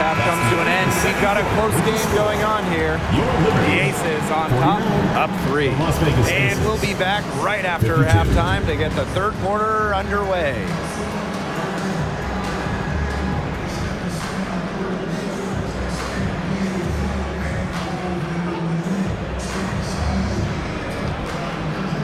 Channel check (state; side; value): identical; both; correlation 1.00